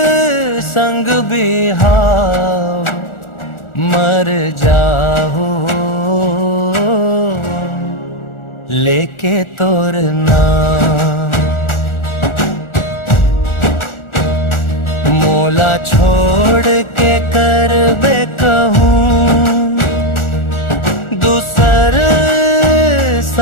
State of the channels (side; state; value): right; late; 1.4 ms